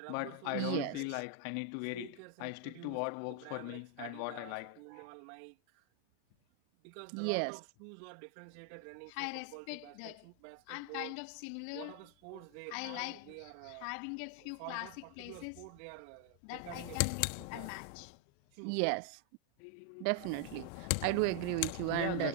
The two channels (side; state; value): both; different; correlation 0.00